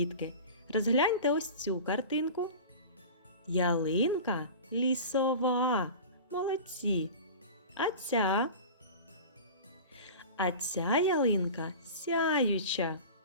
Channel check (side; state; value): both; inverted; correlation -0.34